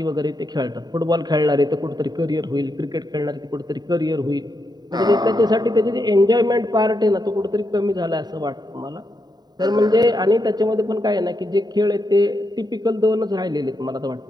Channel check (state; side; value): late; left; 0.20 ms